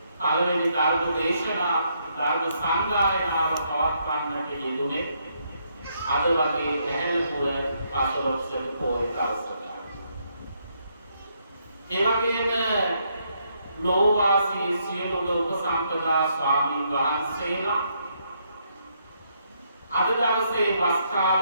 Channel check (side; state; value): both; inverted; correlation -0.74